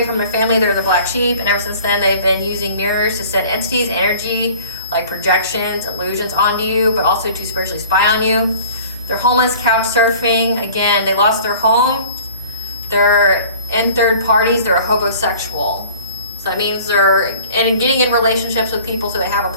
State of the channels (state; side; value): inverted; both; correlation -0.47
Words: from their family. They're the black sheep, and ever since then they've been using mirrors to send entities, energy, like projections, illusions onto you, but also to spiritually spy on you. They're homeless, couch surfing. Again, they lost their home. They're in third parties. They're a homosexual. So that means they're getting in relationships with people so they have a